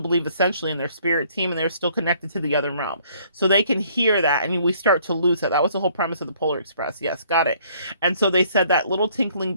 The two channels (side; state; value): both; inverted; correlation -0.61